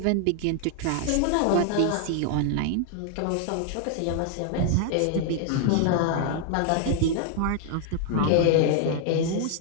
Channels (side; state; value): both; different; correlation 0.00